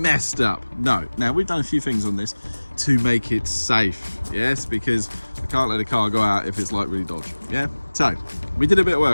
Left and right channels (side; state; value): both; inverted; correlation -1.00